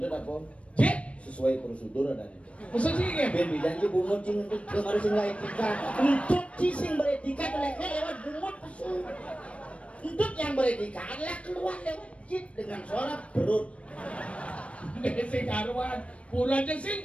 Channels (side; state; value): right; late; 0.062 ms